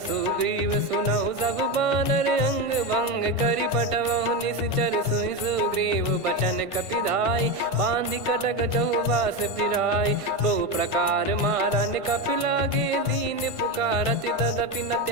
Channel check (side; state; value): left; late; 1.5 ms